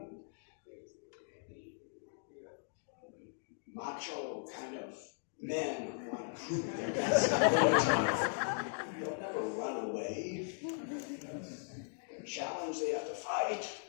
macho kind of men who want to prove their best ability. They'll never run away. They're challenged, they have to fight.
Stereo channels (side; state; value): right; silent; digital silence